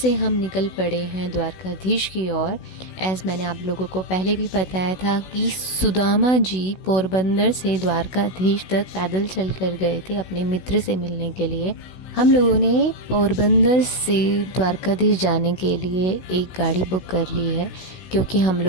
हम निकल पड़े हैं द्वारकाधीश की ओर। एज़ मैंने आप लोगों को पहले भी बताया था कि सुदामा जी पोरबंदर से द्वारकाधीश तक पैदल चल कर गए थे अपने मित्र से मिलने के लिए। हम लोगों ने पोरबंदर से द्वारकाधीश जाने के लिए एक गाड़ी बुक कर ली है, क्योंकि हम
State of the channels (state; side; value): late; right; 16 ms